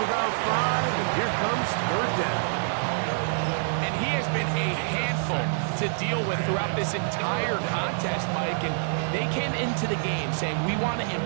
about 5, and here comes third down. And he has been a handful to deal with throughout this entire contest, Mike, and they came into the game saying we want to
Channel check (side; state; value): left; silent; digital silence